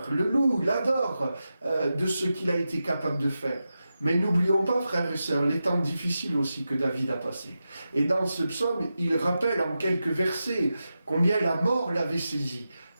le loue, l'adore de ce qu'il a été capable de faire. Mais n'oublions pas, frères et sœurs, les temps difficiles aussi que David a passés. Et dans ce psaume, il rappelle en quelques versets combien la mort l'avait saisi,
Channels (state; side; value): inverted; both; correlation -0.91